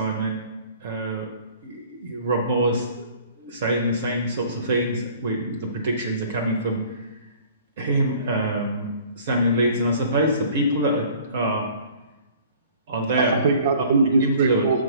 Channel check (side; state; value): both; inverted; correlation -0.51